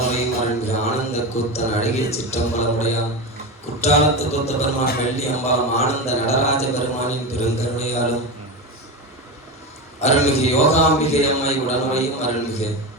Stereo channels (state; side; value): normal; both; correlation 0.20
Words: அருள்மிகு ஆனந்த கூத்தன் அழகிய சிற்றம்பலமுடையான் குற்றாலத்து கூத்த பெருமான் வெள்ளி அம்பாலம் ஆனந்த நடராஜ பெருமானின் பெருங்கருணையாலும் அருள்மிகு யோகாம்பிகை அம்மை உடனுரையும் அருள்மிகு